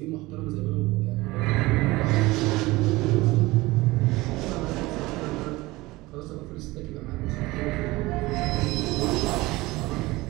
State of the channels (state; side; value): quieter; left; 20.5 dB